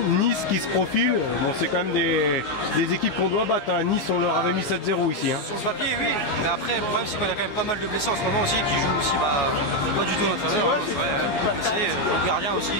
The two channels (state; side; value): late; right; 14 ms